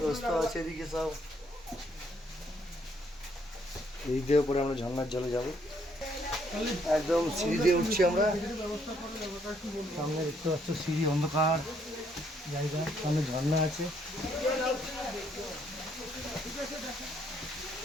রাস্তা আছে এদিকে সব। এই দিয়ে পরে আমরা ঝর্ণার জলে যাবো, একদম সিঁড়ি দিয়ে উঠছি আমরা। সামনে দেখতে পাচ্ছ সিঁড়ি, অন্ধকার জায়গা, সামনে ঝর্ণা আছে।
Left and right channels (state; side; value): normal; both; correlation 0.70